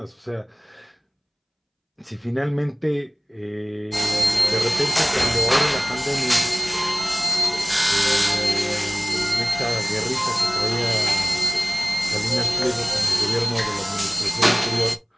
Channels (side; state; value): both; identical; correlation 1.00